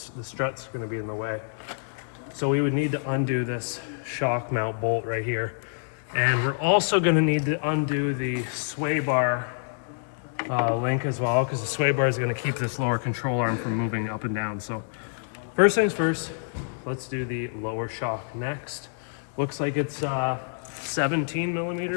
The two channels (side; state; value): right; silent; 60 dB below the other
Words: strut's gonna be in the way. So we would need to undo this shock mount bolt right here. And we're also gonna need to undo the sway bar link as well, because the sway bar is gonna keep this lower control arm from moving up and down. So first things first, let's do the lower shock next. Looks like it's 17